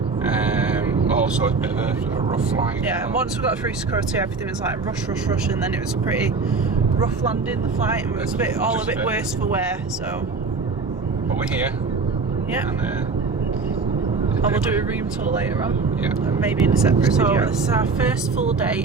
Also a bit of a rough flight. Yeah, and once we got through security, everything was like rush, and then it was a pretty rough landing, the flight, and it was a bit worse for wear, so. But we're here. Yeah. And we'll do a room tour later on. Yeah. Maybe in a separate video. So this is our first full day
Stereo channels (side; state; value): left; quieter; 4.4 dB